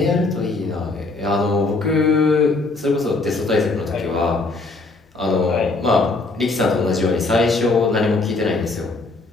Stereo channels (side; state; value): right; quieter; 3.4 dB